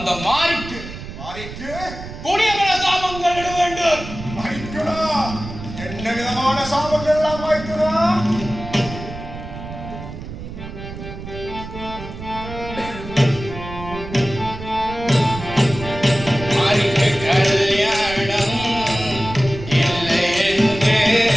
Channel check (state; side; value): noise; right; rumble, 11 dB below the sound